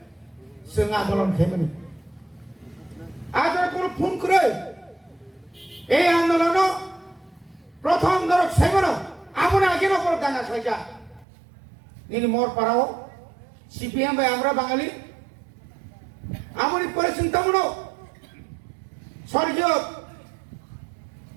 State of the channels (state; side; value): drops out; left; at 11.2 s